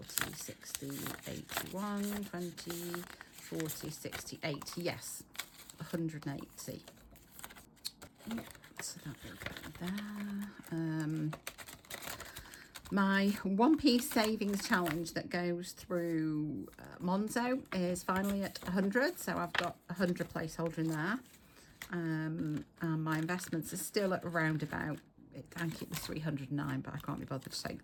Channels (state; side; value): identical; both; correlation 1.00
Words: 60, 81, 20, 40, 60, 80. Yes, 180. So that will go there. My 1p savings challenge that goes through Monzo is finally at 100, so I've got 100 placeholder in there. And my investments are still at around about, I think it was 309, but I can't be bothered to